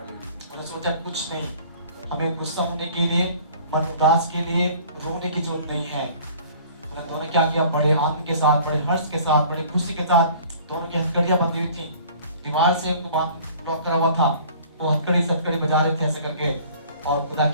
सोचा कुछ नहीं, हमें गुस्सा होने के लिए, मन उदास के लिए रोने की जरूरत नहीं है। उन्होंने क्या किया? बड़े आनंद के साथ, बड़े हर्ष के साथ, बड़े खुशी के साथ दोनों की हथकड़ियां बंधी हुई थी, दीवार से उनको बांध लॉक करा हुआ था। वो हथकड़ी सटकड़ी बजा रहे थे ऐसे करके और खुदा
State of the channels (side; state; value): both; inverted; correlation -0.50